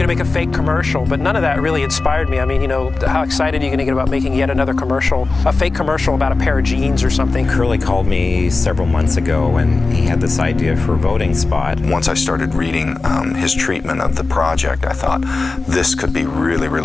make a fake commercial, but none of that really inspired me. I mean, you know, how excited are you going to get about making yet another commercial, a fake commercial about a pair of jeans or something? Curly called me several months ago and he had this idea for a voting spot. Once I started reading his treatment of the project, I thought this could be really,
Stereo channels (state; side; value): quieter; right; 3.7 dB